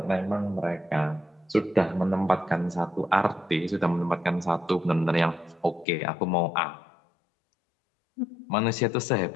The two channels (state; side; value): drops out; right; at 5.9 s